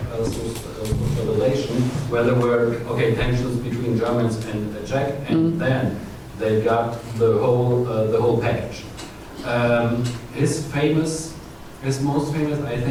social relation, where there were tensions between Germans and the Czech, and then they got the whole package. His most famous, I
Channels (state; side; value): identical; both; correlation 1.00